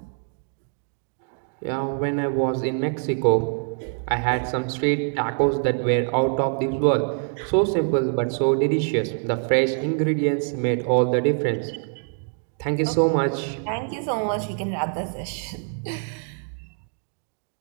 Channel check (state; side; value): silent; left; 59 dB below the other